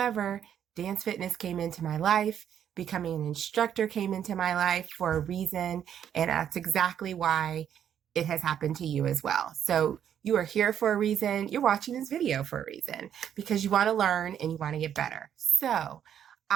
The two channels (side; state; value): left; quieter; 9.4 dB